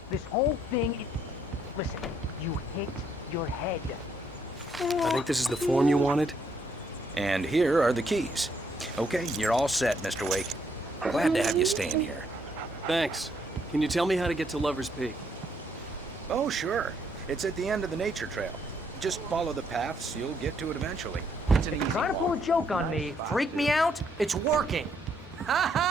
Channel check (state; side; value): normal; both; correlation 0.71